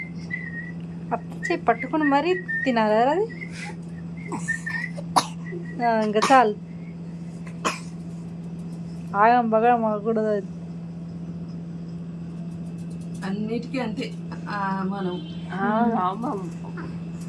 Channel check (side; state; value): both; identical; correlation 1.00